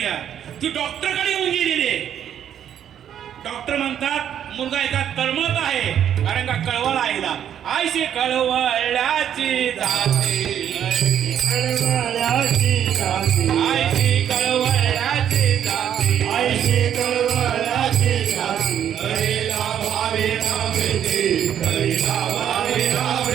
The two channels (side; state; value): left; quieter; 9.7 dB